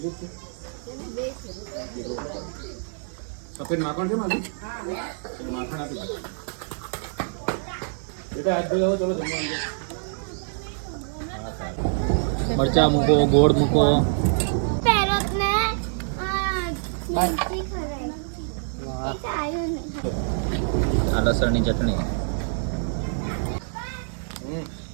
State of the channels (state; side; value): silent; left; digital silence